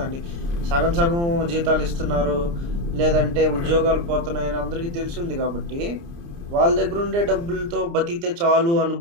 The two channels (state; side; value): late; left; 29 ms